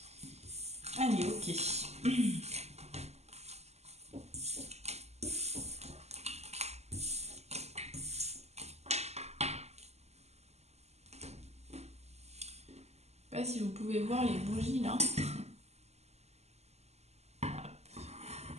Allez, ok. Je sais pas si vous pouvez voir les bougies là. Je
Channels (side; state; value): left; late; 0.31 ms